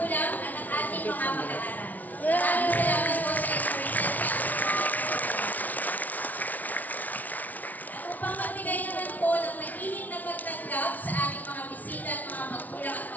at ang ating mga mag-aaral. Maraming salamat po sa inyong at upang magbigay naman po ng mainit na pagtanggap sa ating mga bisita at mga magulang at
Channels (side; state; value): right; late; 0.076 ms